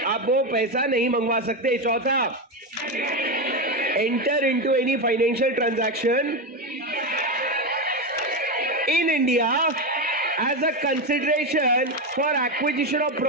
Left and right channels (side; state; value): both; normal; correlation 0.12